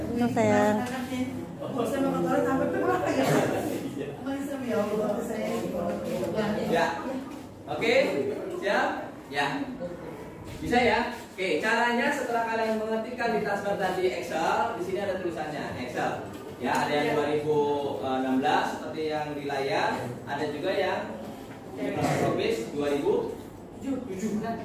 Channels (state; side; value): identical; both; correlation 1.00